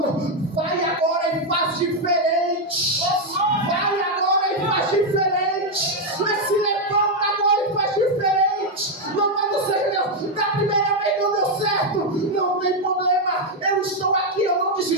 vai agora e faz diferente. Vai agora e faz diferente. Mas se levanta agora e faz diferente. Louvado seja Deus. Da primeira vez não deu certo, não tem problema. Eu estou aqui, eu não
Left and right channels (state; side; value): normal; both; correlation 0.02